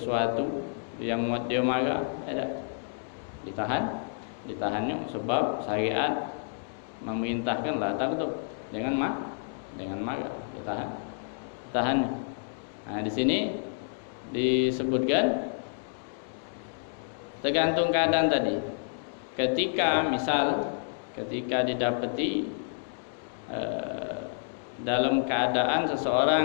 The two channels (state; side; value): silent; right; digital silence